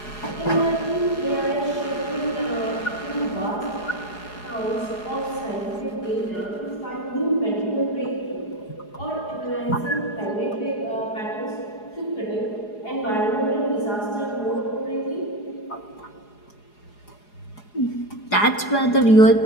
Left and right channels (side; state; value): right; late; 4.8 ms